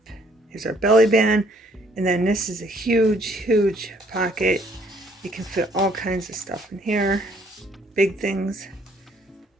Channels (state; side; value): normal; both; correlation 0.63